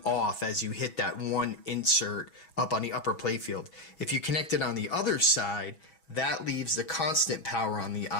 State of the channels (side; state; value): right; late; 6.2 ms